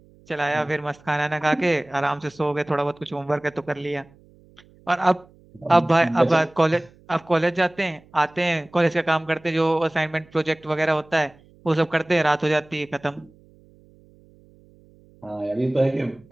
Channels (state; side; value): noise; right; hum, 28 dB below the sound